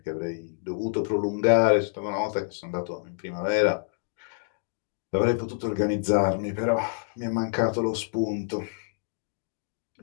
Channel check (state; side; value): silent; right; digital silence